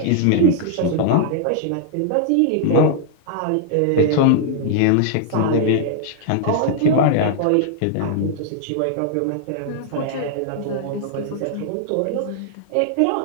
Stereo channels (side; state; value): both; different; correlation -0.01